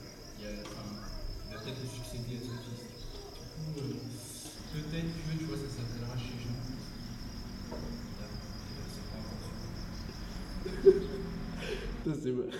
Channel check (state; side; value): identical; both; correlation 1.00